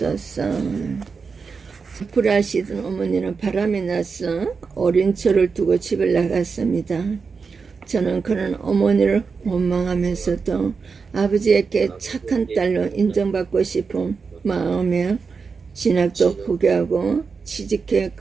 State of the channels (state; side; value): quieter; left; 5.1 dB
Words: 불하시던 어머니는 바람이 나서 어린 저를 두고 집을 나갔습니다. 저는 그런 어머니를 원망하면서도 아버지에게 착한 딸로 인정받고 싶은 마음에 진학도 포기하고 취직해